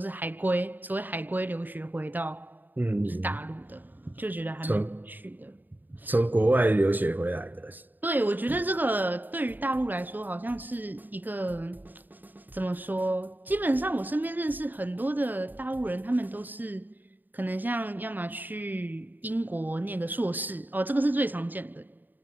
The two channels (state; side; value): late; left; 0.088 ms